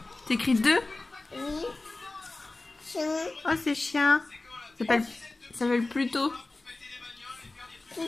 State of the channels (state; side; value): quieter; right; 3.1 dB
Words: T'écris 2? Oui. Chien. Oh, c'est chien. Ça s'appelle Pluto.